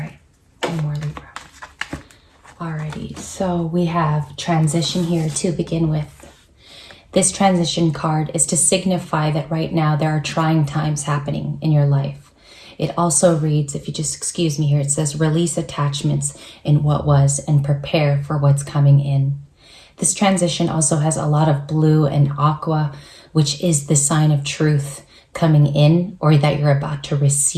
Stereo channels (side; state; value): both; identical; correlation 1.00